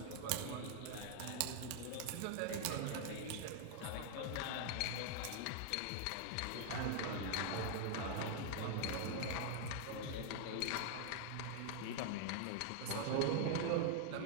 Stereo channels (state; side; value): different; both; correlation 0.00